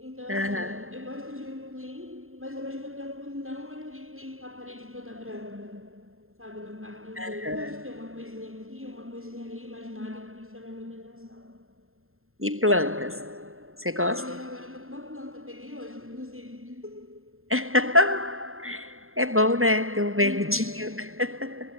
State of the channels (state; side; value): late; left; 0.61 ms